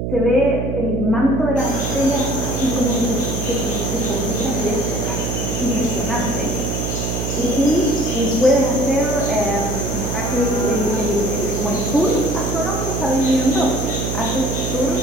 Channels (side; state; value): right; noise; hum, 2 dB below the sound